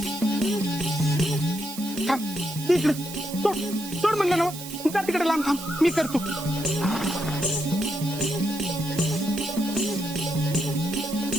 थांब. तिकडे सोड सोड म्हणलं ना. जा तिकडे लांब थांब. मी करतो.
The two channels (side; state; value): right; noise; hiss, 11 dB below the sound